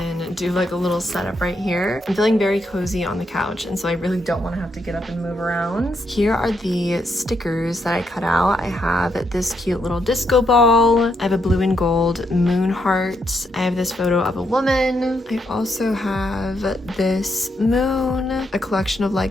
do like a little setup right here. I'm feeling very cozy on the couch, and so I really don't want to have to get up and move around. Here are the stickers that I cut out. I have this cute little disco ball. I have a blue and gold moon heart. I have this photo of a woman. I also have this moon, a collection of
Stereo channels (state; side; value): normal; both; correlation 0.78